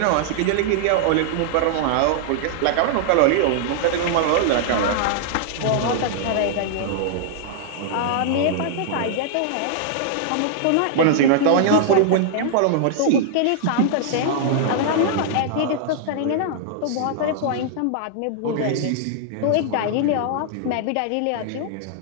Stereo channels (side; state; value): both; different; correlation -0.01